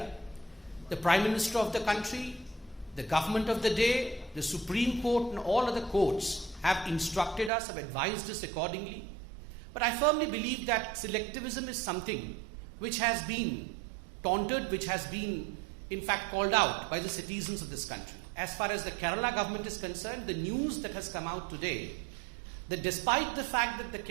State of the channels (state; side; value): drops out; left; at 7.5 s